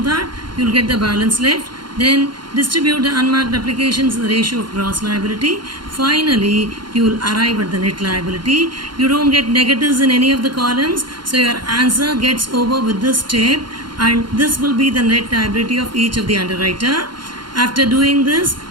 that, you will get the balance left. Then distribute the unmarked applications in the ratio of gross liability. Finally, you will arrive at the net liability. You don't get negatives in any of the columns. So your answer gets over with this step, and this will be the net liability of each of the underwriter. After doing this,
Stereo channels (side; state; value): left; late; 0.71 ms